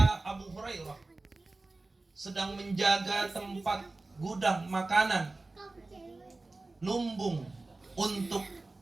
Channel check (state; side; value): quieter; left; 3.2 dB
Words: Abu Hurairah sedang menjaga tempat gudang makanan lumbung untuk